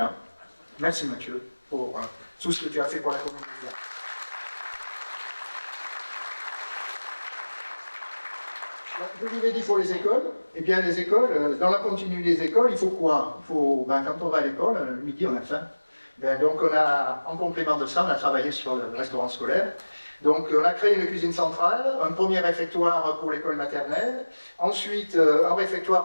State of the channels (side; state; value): both; inverted; correlation -1.00